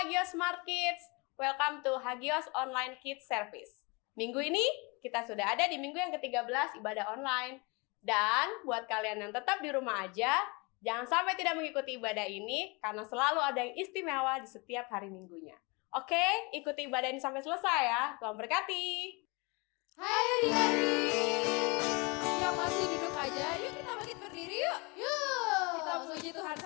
Hagios Smart Kids, welcome to Hagios Online Kids Service. Minggu ini kita sudah ada di minggu yang ke-13 ibadah online. Dan buat kalian yang tetap di rumah aja, jangan sampai tidak mengikuti ibadah ini karena selalu ada yang istimewa di setiap hari minggunya. Oke, ikuti ibadah ini sampai selesai ya. Tuhan berkati. Hai adik-adik yang masih duduk aja, yuk kita bangkit berdiri yuk. Kita memuji Tuhan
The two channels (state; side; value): quieter; right; 28.5 dB